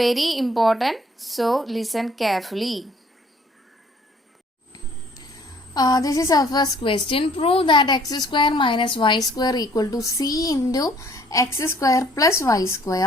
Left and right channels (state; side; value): normal; both; correlation 0.58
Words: important, so listen carefully. This is our first question. Prove that x square minus y square equal to c into x square plus y